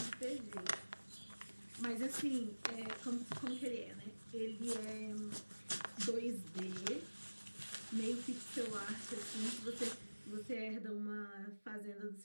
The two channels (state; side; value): inverted; both; correlation -1.00